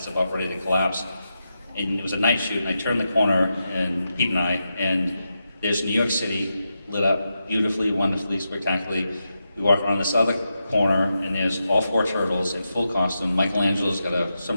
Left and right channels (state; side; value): inverted; both; correlation -0.87